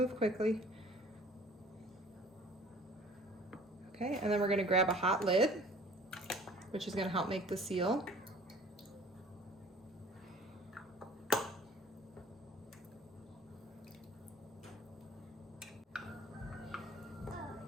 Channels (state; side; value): normal; both; correlation 0.49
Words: quickly. Okay, and then we're gonna grab a hot lid, which is gonna help make the seal.